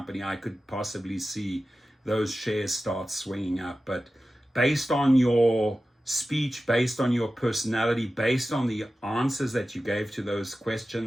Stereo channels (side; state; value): both; normal; correlation 0.94